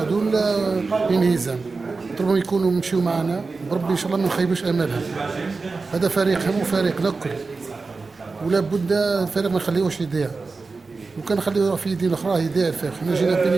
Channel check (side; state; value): left; quieter; 4.1 dB